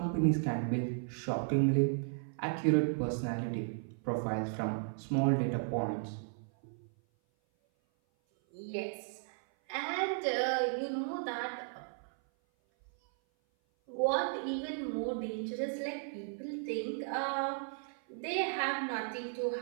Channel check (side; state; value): left; silent; 54 dB below the other